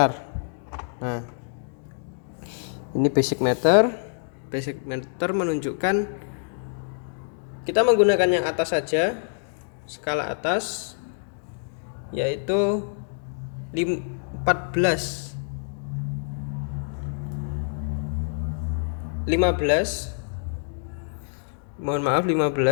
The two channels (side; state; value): right; silent; digital silence